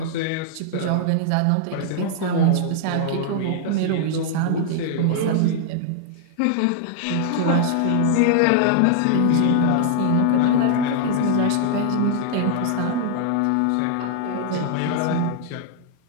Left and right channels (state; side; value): different; both; correlation -0.01